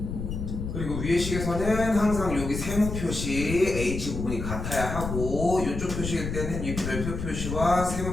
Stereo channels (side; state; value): left; noise; rumble, 5 dB below the sound